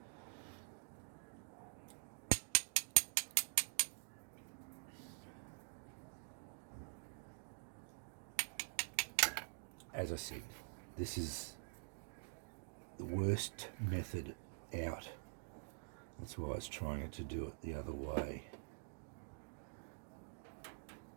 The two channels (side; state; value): left; silent; digital silence